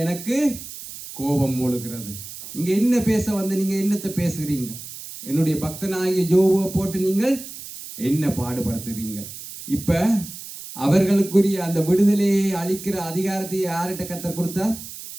எனக்கு கோபம் மூழுகிறது. நீங்க என்ன பேச வந்து நீங்க என்னத்தை பேசுகிறீங்க? என்னுடைய பக்தனாகிய யோபுவை போட்டு நீங்கள் என்ன பாடுபடுத்துகிறீங்க? இப்ப அவர்களுக்குரிய அந்த விடுதலையை அளிக்கிற அதிகாரத்தை யார்கிட்ட கர்த்தர் கொடுத்தார்?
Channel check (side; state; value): right; noise; hiss, 12 dB below the sound